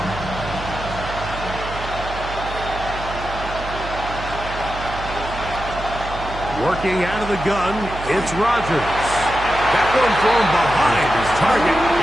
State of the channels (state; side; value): noise; right; hum, 10 dB below the sound